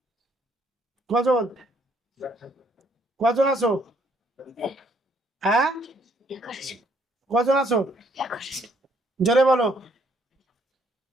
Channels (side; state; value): both; normal; correlation 0.67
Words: কজন কজন আছো? হ্যাঁ, কজন আছো? জোরে বলো,